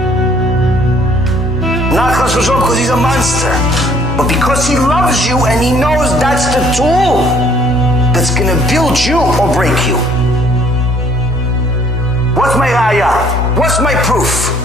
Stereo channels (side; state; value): both; normal; correlation 0.60